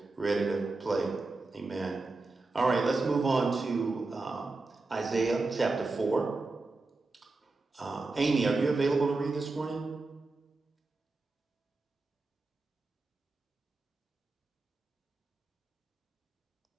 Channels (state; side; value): quieter; left; 3.5 dB